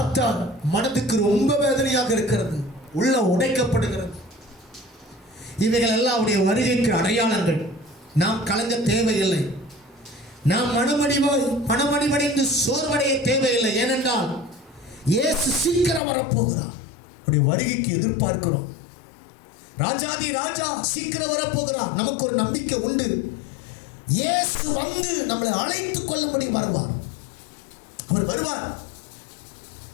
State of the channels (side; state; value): right; drops out; at 16.0 s